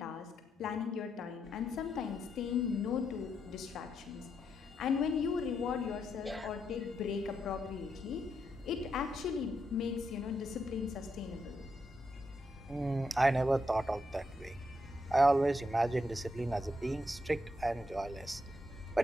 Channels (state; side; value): normal; both; correlation 0.81